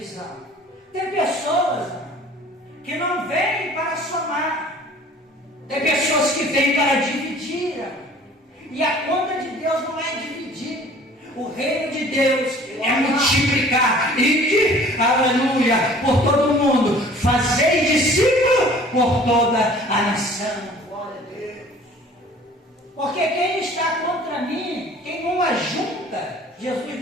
Tem pessoas que não vêm para somar. Tem pessoas que vêm para dividir. E a conta de Deus não é dividir. O reino de Deus é multiplicar. Ide, aleluia, por todo o mundo. Fazei discípulo por toda a nação. Glória a Deus. Porque quem está contra mim, quem não ajunta,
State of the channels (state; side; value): normal; both; correlation 0.50